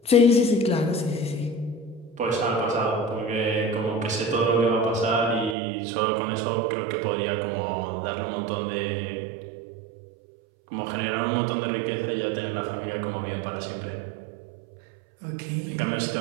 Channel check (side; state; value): left; drops out; at 5.6 s